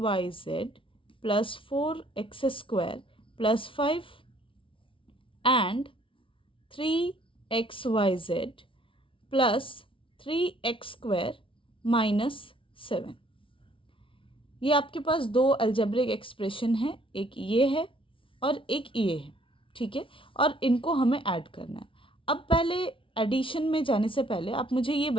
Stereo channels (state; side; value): late; right; 0.25 ms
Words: plus 4x square plus 5 and 3xyz plus 3x square minus 7। ये आपके पास दो अलजेब्रिक एक्सप्रेशन है, एक ये है और एक ये है। ठीक है, और इनको हमें ऐड करना है। अब पहले एडिशन में जाने से पहले आप मुझे ये